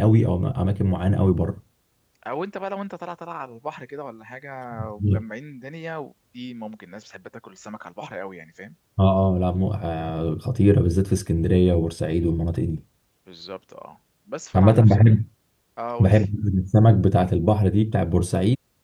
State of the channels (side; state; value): both; identical; correlation 1.00